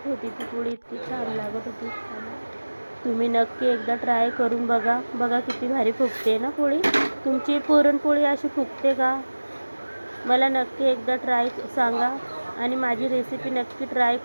होती ती पोळी, इतकी छान लागत होती खायला. तुम्ही नक्की एकदा ट्राय करून बघा. बघा किती भारी फुगते ना पोळी. तुमची पुरणपोळी अशी फुगते का? मला नक्की एकदा ट्राय सांगा आणि माझी रेसिपी नक्की ट्राय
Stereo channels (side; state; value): both; inverted; correlation -1.00